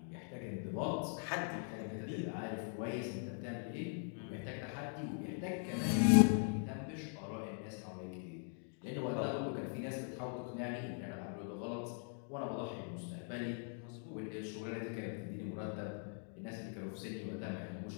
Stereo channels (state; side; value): silent; right; 50 dB below the other